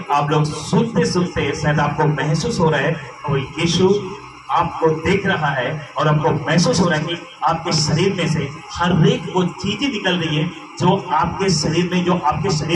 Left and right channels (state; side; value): identical; both; correlation 1.00